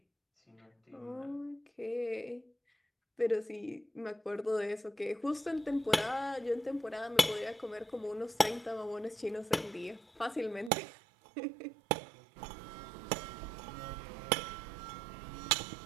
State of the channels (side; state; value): left; drops out; at 10.7 s